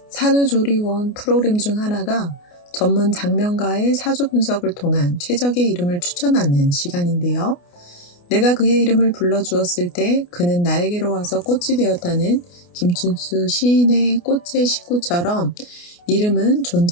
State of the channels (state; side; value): late; right; 28 ms